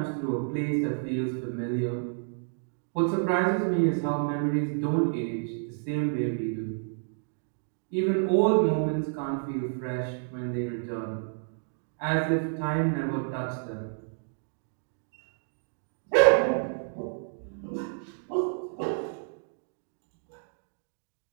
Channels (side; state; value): left; silent; 58 dB below the other